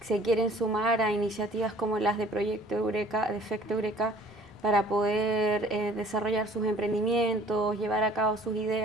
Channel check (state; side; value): normal; both; correlation 0.53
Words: se quieren sumar a iniciativas como las de Proyecto Eureka, de Efecto Eureka, para poder desarrollar sus emprendimientos, llevar a cabo sus